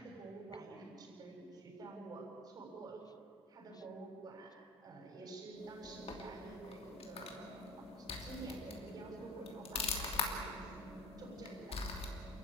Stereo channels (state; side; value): normal; both; correlation 0.35